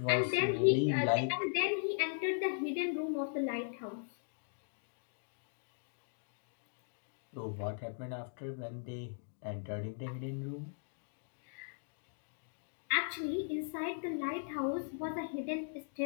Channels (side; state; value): right; silent; digital silence